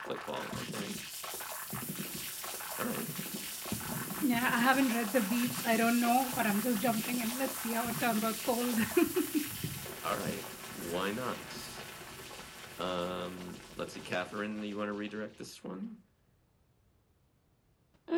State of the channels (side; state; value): both; identical; correlation 1.00